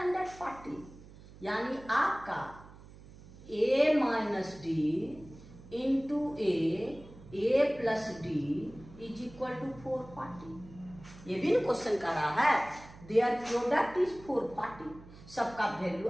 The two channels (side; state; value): right; noise; hum, 19 dB below the sound